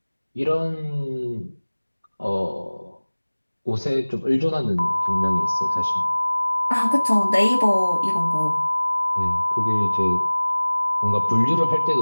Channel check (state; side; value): inverted; both; correlation -1.00